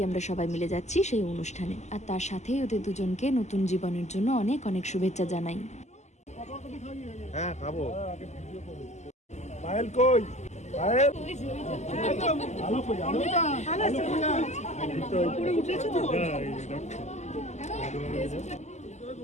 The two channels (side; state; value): right; late; 0.33 ms